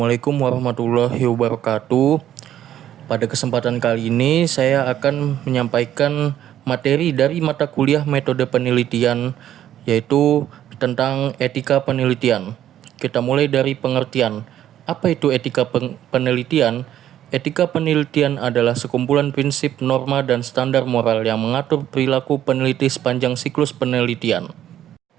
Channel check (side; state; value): left; quieter; 11.5 dB